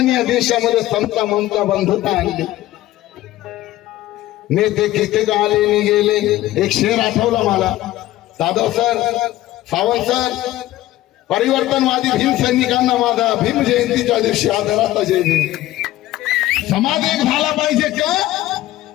या देशामध्ये समता ममता बंधुता आणली. नेते किती आले गेले. एक शेर आठवला मला, जाधव सर, सावंत सर, परिवर्तनवादी भीम सैनिकांना माझा भीम जयंतीच्या दिवशी आदराचा जय भीम. समाज एक झाला पाहिजे का?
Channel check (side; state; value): right; quieter; 15.5 dB